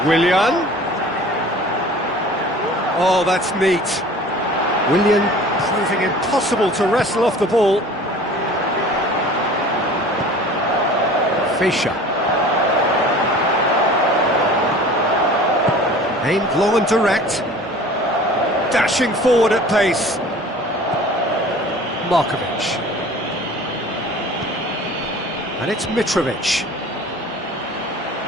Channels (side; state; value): both; normal; correlation 0.44